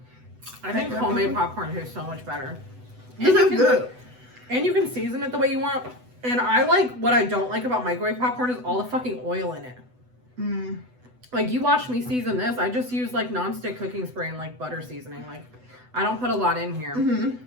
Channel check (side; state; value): left; late; 8.0 ms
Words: I think homemade popcorn tastes so much better. This is good. And you can season it the way you want. And I like, what I don't like about microwave popcorn is all the fucking oil in it. Like, you watch me season this, I just use like nonstick cooking spray and like butter seasoning. Like, I don't put a lot in here.